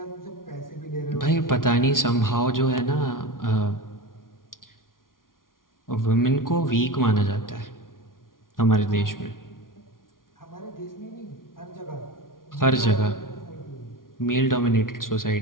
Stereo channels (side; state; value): right; late; 0.90 ms